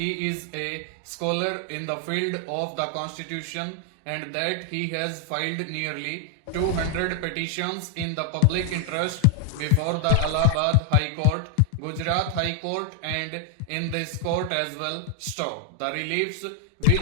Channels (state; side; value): different; both; correlation 0.00